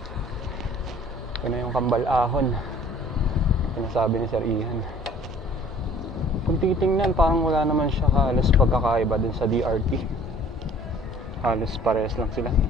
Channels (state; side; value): normal; both; correlation 0.53